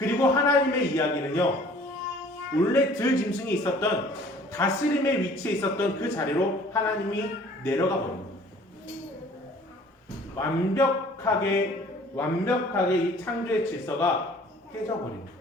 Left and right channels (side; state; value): both; normal; correlation 0.52